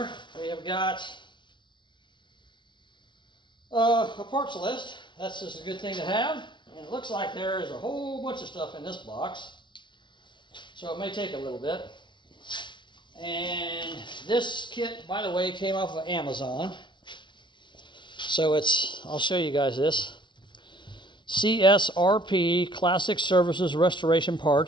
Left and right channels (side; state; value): right; late; 0.23 ms